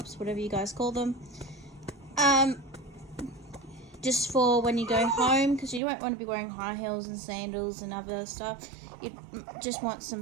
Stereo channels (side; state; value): left; drops out; at 5.8 s